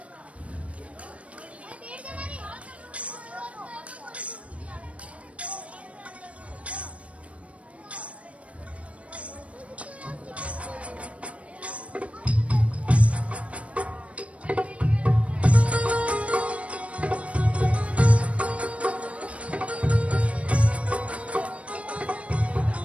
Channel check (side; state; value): left; late; 0.064 ms